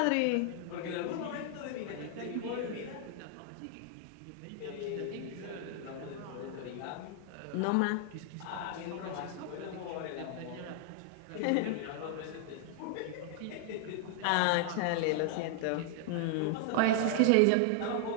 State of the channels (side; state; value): both; different; correlation 0.00